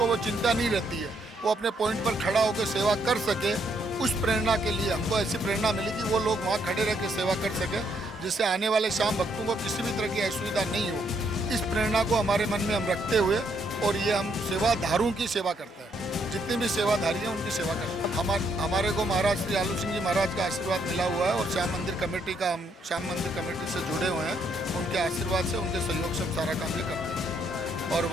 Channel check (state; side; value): normal; both; correlation 0.73